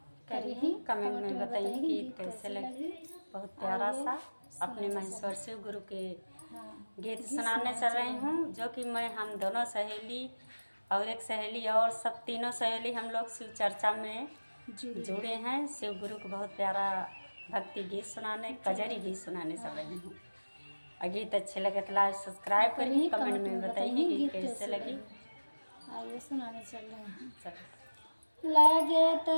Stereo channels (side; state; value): both; inverted; correlation -1.00